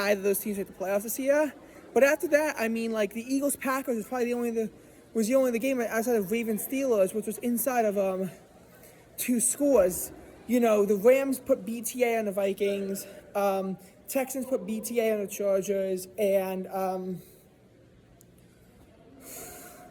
of those teams made the playoffs this year. But after that, I mean, the Eagles-Packers was probably the only game outside of Ravens-Steelers, which was inside of 2 scores. The Rams put BTA on the Vikings, Texans put BTA on the Chargers, and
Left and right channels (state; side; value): identical; both; correlation 1.00